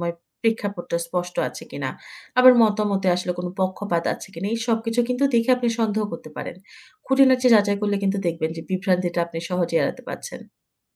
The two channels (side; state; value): both; identical; correlation 1.00